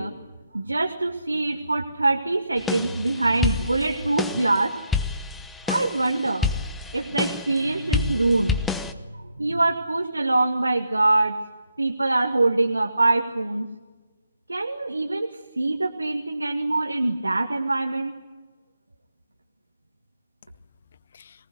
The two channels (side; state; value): both; inverted; correlation -0.80